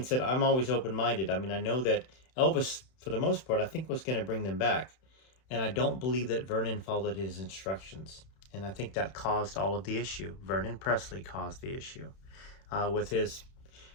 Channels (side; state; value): right; late; 31 ms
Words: said, I'm always open-minded. I mean, I know that Elvis, for the most part, I think was going to bring them back. And I don't believe that Vernon followed his instructions. And I think that caused all of the issue. Vernon Presley caused the issue with his,